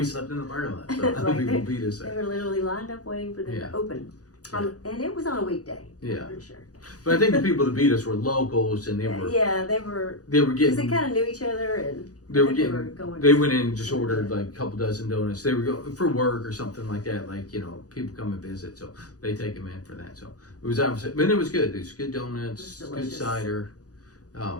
slept in the parking lot. So other people beat us there. They were literally lined up waiting for them to open. And it was on a weekday. Yeah. I'm pretty sure. But I think the people that beat us were locals, and they were they were getting because they kind of knew each other, and they went in and just ordered a couple dozen donuts. They were going for work or something like that. People come and visit, so they take them in for that. So it was opposite, but it was good. It was good donuts, good cider, good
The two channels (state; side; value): late; right; 0.67 ms